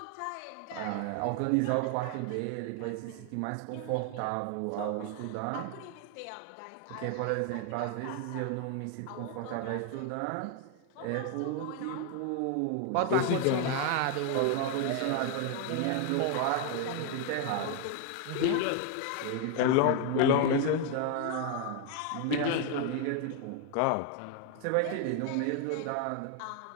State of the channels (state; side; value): different; both; correlation 0.01